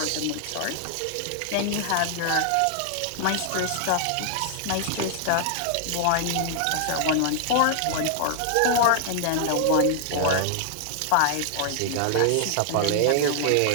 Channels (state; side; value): different; both; correlation -0.01